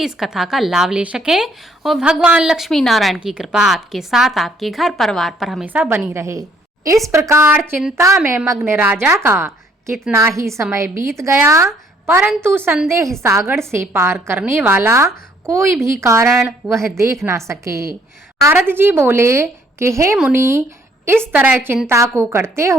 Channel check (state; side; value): normal; both; correlation 0.64